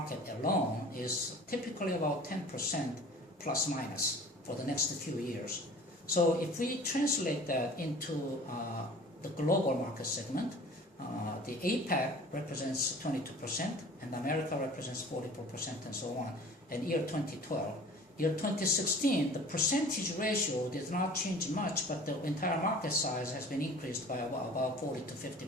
alone is typically about 10% plus minus for the next few years. So if we translate that into the global market segment, the APAC represents 22% and America represents 44% and so on. And year 2012. Year 2016, the percentage ratio did not change much, but the entire market size has been increased by about 40 to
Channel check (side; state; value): both; normal; correlation 0.45